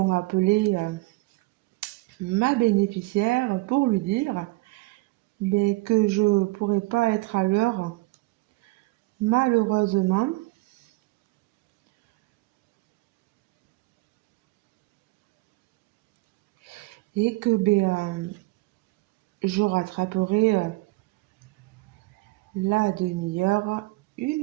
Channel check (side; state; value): left; quieter; 22.5 dB